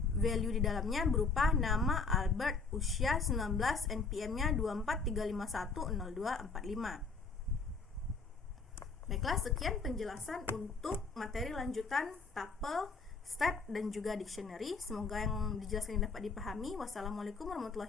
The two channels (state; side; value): quieter; right; 4.4 dB